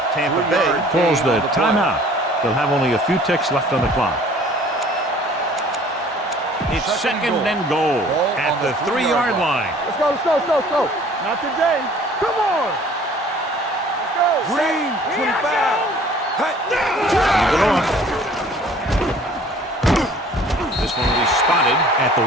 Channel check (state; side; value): normal; both; correlation 0.52